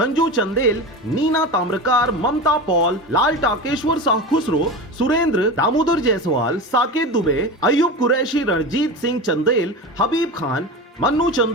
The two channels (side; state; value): both; normal; correlation 0.26